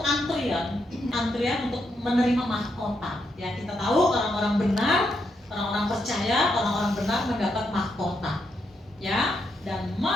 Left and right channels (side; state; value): both; normal; correlation 0.80